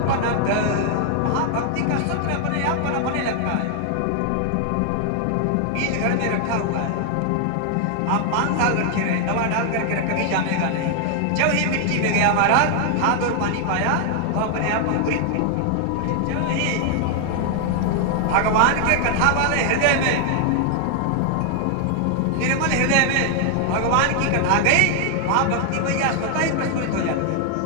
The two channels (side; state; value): both; different; correlation 0.00